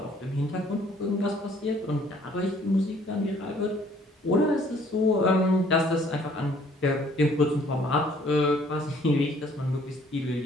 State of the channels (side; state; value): both; normal; correlation 0.60